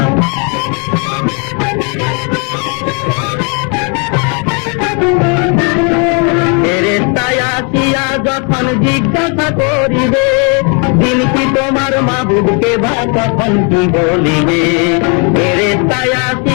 ফেরেশতায় আসিয়া যখন জিজ্ঞাসা করিবে, দিন কি তোমার মাবুদকে বা তখন কি বলিবে। ফেরেশতায়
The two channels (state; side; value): quieter; right; 36.1 dB